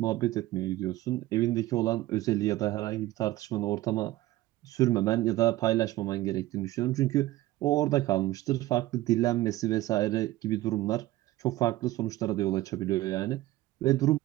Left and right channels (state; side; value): quieter; left; 16.6 dB